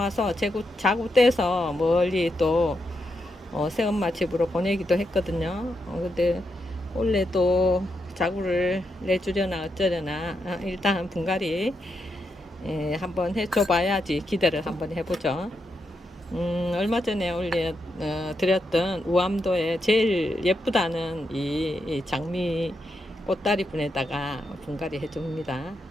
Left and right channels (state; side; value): normal; both; correlation 0.83